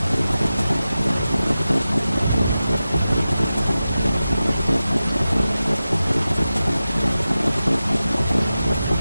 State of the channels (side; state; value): both; inverted; correlation -0.94